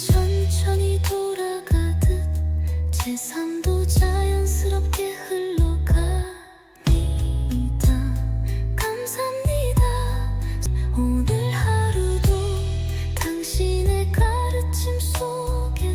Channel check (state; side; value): identical; both; correlation 1.00